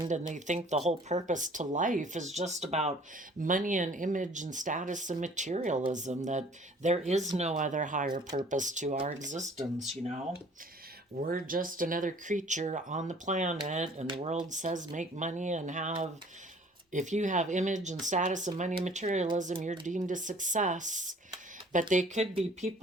and they think the whole purpose to life is just about money and image and status and materialism, that there is no other higher purpose to our existence. We're just another creature on the planet, and the world says make money and have, if you have image and status and money and materialism, you're deemed a success. But they could be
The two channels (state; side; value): normal; both; correlation 0.53